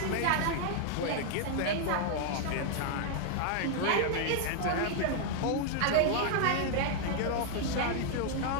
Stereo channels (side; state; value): both; different; correlation 0.00